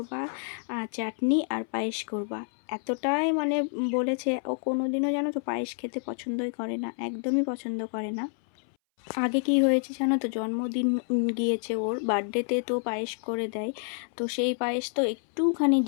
চাটনি আর পায়েস করবা। এতটাই মানে বলেছে, ও কোনোদিনও জানো তো পায়েস খেতে পছন্দই করে না, একদমই পছন্দ করে না। আগে কি হয়েছে জানো তো, জন্মদিন গিয়েছে ওর, বার্থডেতে তো পায়েস করে দেয়। তো সেই পায়েস তো একটুখানি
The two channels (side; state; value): right; silent; 59 dB below the other